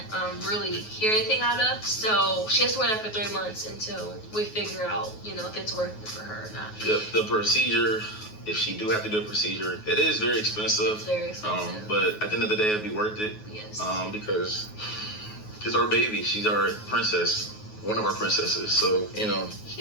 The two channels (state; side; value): late; right; 9.4 ms